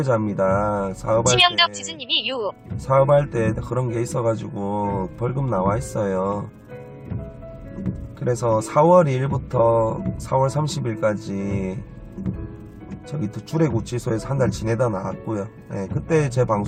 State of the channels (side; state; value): both; identical; correlation 1.00